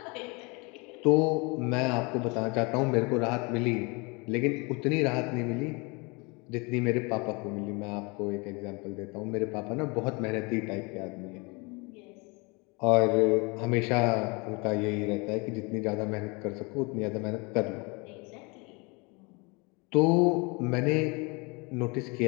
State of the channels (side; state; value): right; quieter; 28.8 dB